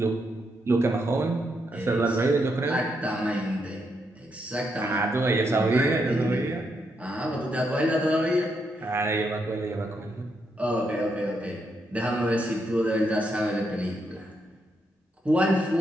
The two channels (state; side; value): normal; both; correlation 0.79